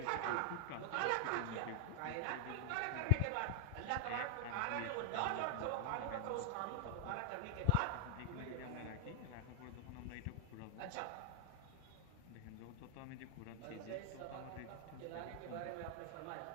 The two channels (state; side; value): different; both; correlation 0.00